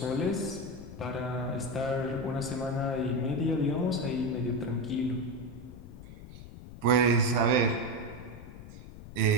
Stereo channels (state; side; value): noise; left; rumble, 14 dB below the sound